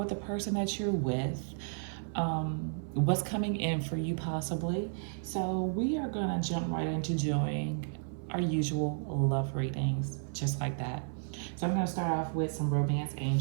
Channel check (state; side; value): silent; left; 56 dB below the other